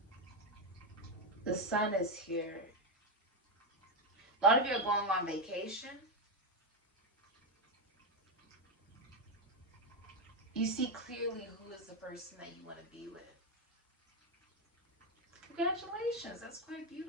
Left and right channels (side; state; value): both; normal; correlation 0.07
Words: this. The sun is here. A lot of you are going on vacation. You see clearly who is the person that you want to be with. Congratulations, that's quite